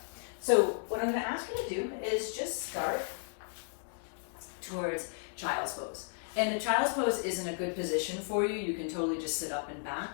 So what I'm going to ask you to do is just start towards child's pose. And a child's pose isn't a good position for you. You can totally just sit up and back.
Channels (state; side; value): silent; right; 55 dB below the other